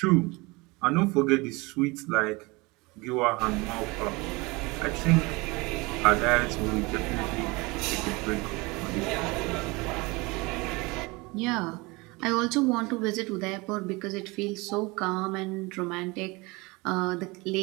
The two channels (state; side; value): quieter; left; 24.9 dB